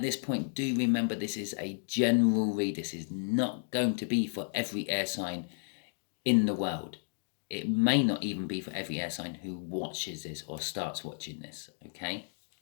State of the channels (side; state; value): right; silent; digital silence